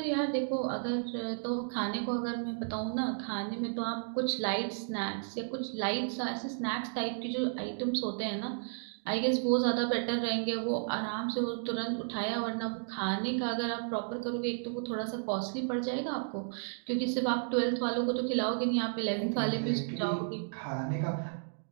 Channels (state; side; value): silent; left; digital silence